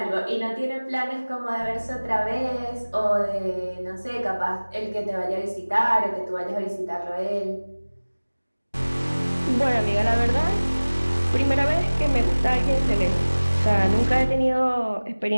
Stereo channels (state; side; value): inverted; both; correlation -1.00